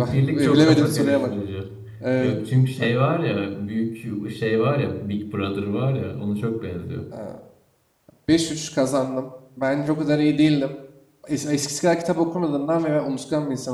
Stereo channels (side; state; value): both; identical; correlation 1.00